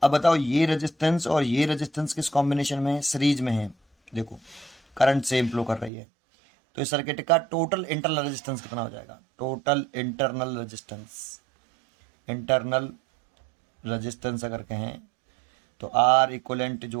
अब बताओ, ये रेजिस्टेंस और ये रेजिस्टेंस किस कॉम्बिनेशन में है? सीरीज में है। देखो करंट सेम फ्लो कर रही है, तो इस सर्किट का टोटल इंटरनल रेजिस्टेंस कितना हो जाएगा? Total internal resistance, internal resistance अगर कहें तो R इक्वलेंट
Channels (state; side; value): drops out; left; at 5.9 s